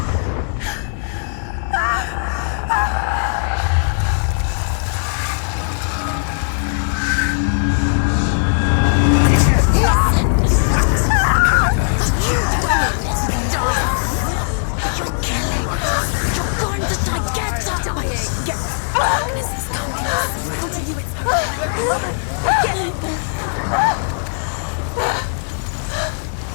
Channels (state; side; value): silent; right; 56 dB below the other